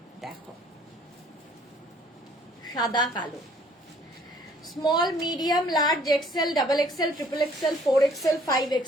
দেখো, সাদা কালো, small, medium, large, XL, double XL, triple XL, 4XL,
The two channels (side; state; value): both; normal; correlation 0.58